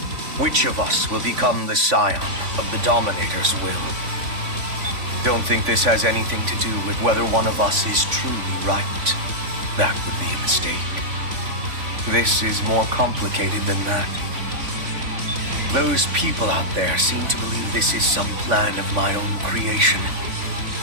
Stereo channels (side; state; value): left; late; 3.5 ms